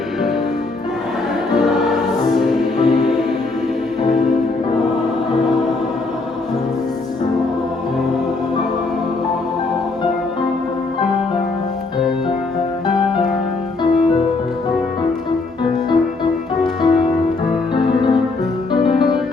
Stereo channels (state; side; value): quieter; right; 3.6 dB